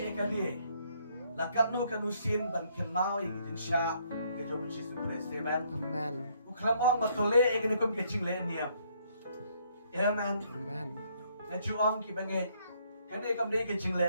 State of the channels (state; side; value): inverted; both; correlation -0.68